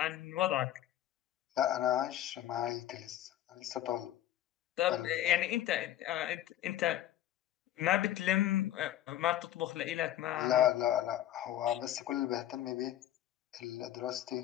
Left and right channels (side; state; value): right; quieter; 12.6 dB